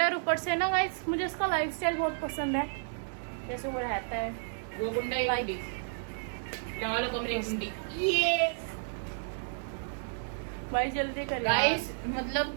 है। ऊपर से ना गाइस मुझे इसका लाइफस्टाइल बहुत पसंद है, जैसे वो रहता है, वो गुंडा ही गुंडी लगा लो कमरे गुंडी। ये भाई जल्दी करिए गाइस,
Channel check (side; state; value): left; silent; digital silence